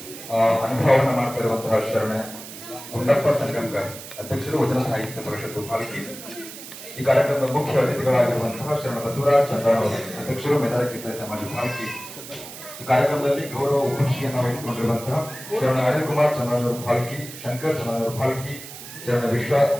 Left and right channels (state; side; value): noise; right; hiss, 13 dB below the sound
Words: ಅನುಭವವನ್ನು ಮಾಡ್ತಾ ಇರುವಂತಹ ಶರಣ ಗುಂಡಪ್ಪ ಸಂಗಂಕರ್ ಅಧ್ಯಕ್ಷರು ವಚನ ಸಾಹಿತ್ಯ ಪರಿಷತ್ತು ಭಾಲ್ಕಿ. ಈ ಕಾರ್ಯಕ್ರಮದ ಮುಖ್ಯ ಅತಿಥಿಗಳಾಗಿರುವಂತಹ ಶರಣ ಬಸವರಾಜ್ ಚಂದ್ರನ್ ಅಧ್ಯಕ್ಷರು ಮೇದಾರ ಕೀರ್ತನೆ ಸಮಾಜ ಭಾಲ್ಕಿ. ಈ ಕಾರ್ಯಕ್ರಮದಲ್ಲಿ ಗೌರವ ಉಪಸ್ಥಿತಿಯನ್ನು ವಹಿಸಿಕೊಂಡಿರುವಂತಹ ಶರಣ ಅನಿಲ್ ಕುಮಾರ್ ಚಂದ್ರನ್ ಭಾಲ್ಕಿ, ಶಂಕರ್ ಚಂದ್ರನ್ ಭಾಲ್ಕಿ, ಶರಣ